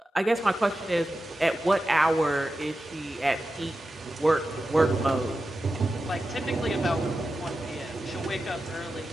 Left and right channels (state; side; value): normal; both; correlation 0.92